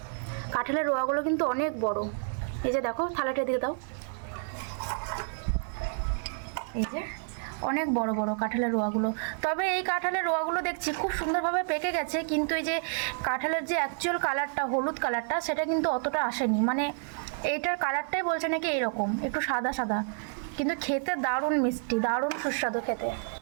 কাঁঠালের রোয়াগুলো কিন্তু অনেক বড়। এই যে দেখো থালাটা দিয়ে দাও, এই যে অনেক বড় বড় কাঁঠালের রোয়াগুলো। তবে এই কাঁঠালের রোয়াগুলো দেখছি খুব সুন্দরভাবে পেকে গেছে, কিন্তু এই যে কাঁঠালের যে অ্যাকচুয়াল কালারটা, হলুদ কালারটা, সেটা কিন্তু অতটা আসেনি। মানে এইটার কালারটাই বলছে নাকি এরকম একটু সাদা সাদা, কিন্তু খেতে দারুণ মিষ্টি, দারুণ সুস্বাদু খেতে।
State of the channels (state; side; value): silent; left; 58 dB below the other